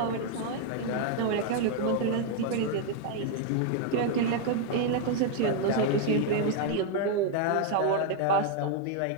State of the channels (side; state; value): both; different; correlation 0.00